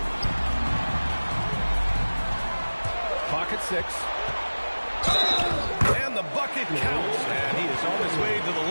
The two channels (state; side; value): inverted; both; correlation -1.00